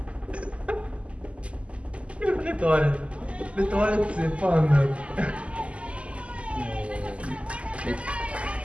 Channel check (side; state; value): left; late; 0.059 ms